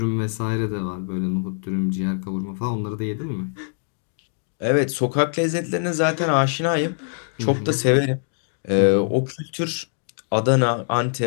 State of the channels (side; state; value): right; silent; digital silence